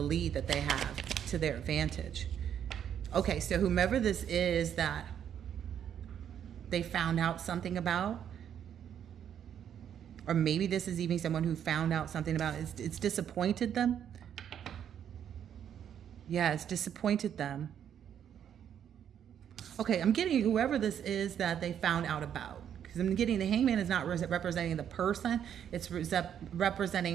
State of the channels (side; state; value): left; quieter; 9.2 dB